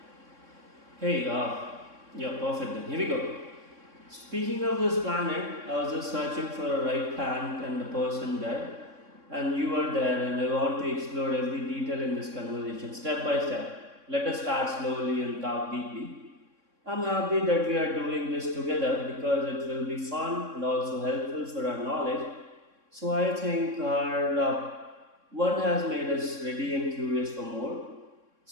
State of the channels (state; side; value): late; left; 3.6 ms